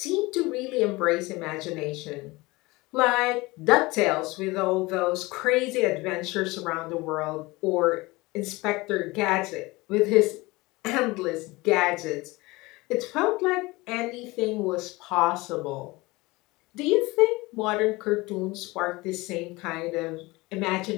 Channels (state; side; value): quieter; right; 22.2 dB